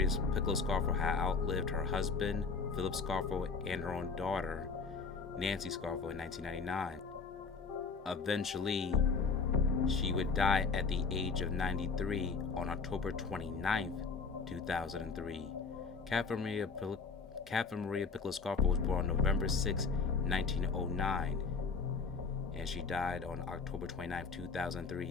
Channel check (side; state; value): right; quieter; 4.8 dB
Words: Piccolo Scarfo had outlived her husband, Philip Scarfo, and her own daughter, Nancy Scarfo, in 1999. Eventually, she would die at the age of 93 on October 29th, 2003. Catherine Maria Piccolo Scarfo was born on November 6, 1909. And she died on October 29,